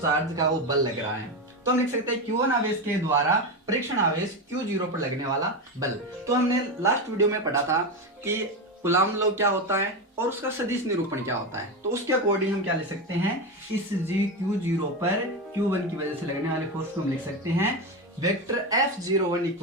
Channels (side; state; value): both; normal; correlation 0.16